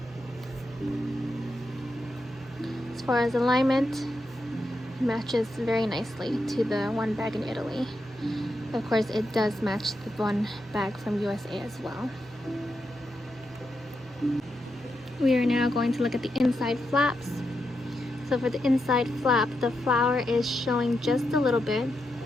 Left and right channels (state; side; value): normal; both; correlation 0.85